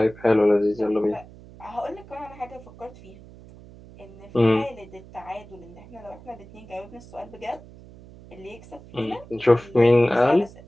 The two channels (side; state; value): right; noise; hum, 20 dB below the sound